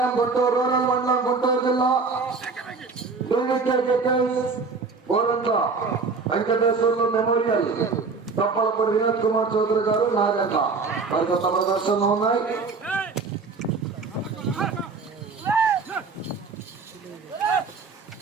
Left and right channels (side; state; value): left; quieter; 4.5 dB